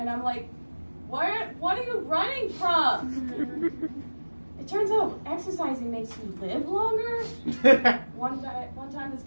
I'm like, what are you running from? It turns out exercising makes you live longer. One time this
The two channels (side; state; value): both; inverted; correlation -1.00